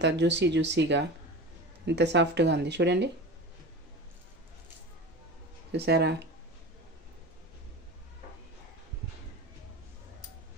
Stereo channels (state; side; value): normal; both; correlation 0.32